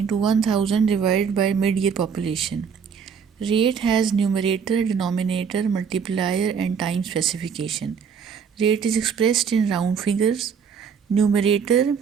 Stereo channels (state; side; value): quieter; left; 6.7 dB